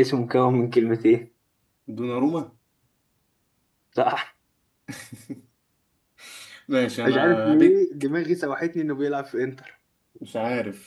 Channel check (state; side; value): identical; both; correlation 1.00